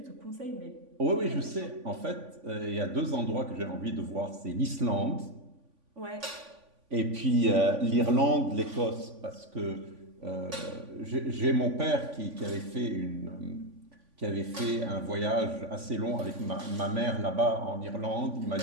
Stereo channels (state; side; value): late; left; 3.5 ms